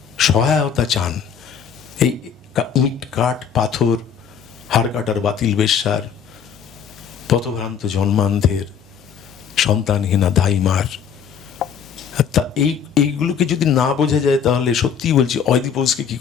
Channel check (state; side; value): quieter; right; 7.5 dB